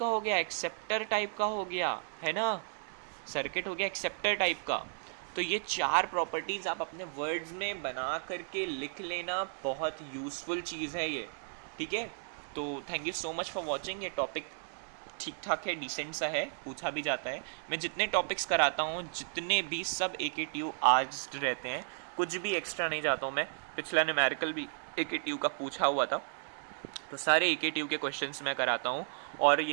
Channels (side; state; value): left; silent; digital silence